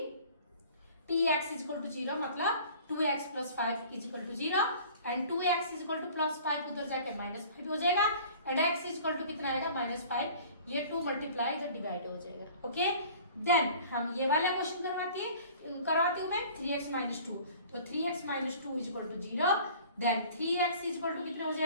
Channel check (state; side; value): inverted; both; correlation -0.47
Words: t x is equal to zero मतलब 2x plus 5 is equal to zero and 2x is equal to plus 5 उधर जाके -5 हो जाएगा and x is equal to कितना आएगा, -5। ये 2 मल्टीप्लाई इधर डिवाइड हो जाएगा, ओके। देन हम ये वाला क्वेश्चन करवाती हूँ मैं 3x माइनस 2। तो 3x minus 2 is equal to zero. Then 3x is equal to कितना हो